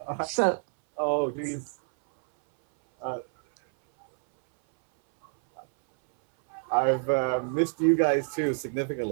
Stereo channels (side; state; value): left; silent; 60 dB below the other